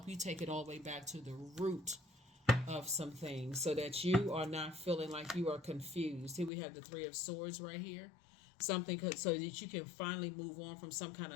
you take it all the way back to the root of some things so that you are not feeling like you are confused. Here we have the Three of Swords right here. Something so that you can finally move on from some kind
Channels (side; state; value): right; drops out; at 6.5 s